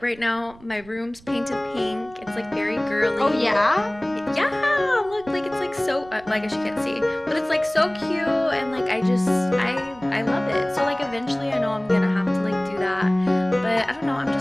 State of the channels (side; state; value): right; noise; rumble, 24 dB below the sound